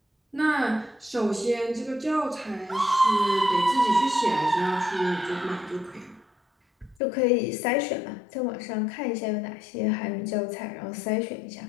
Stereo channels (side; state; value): right; drops out; at 7.0 s